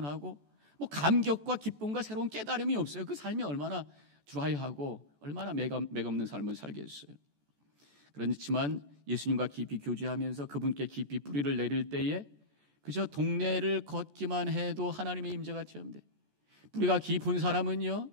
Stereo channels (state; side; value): late; left; 14 ms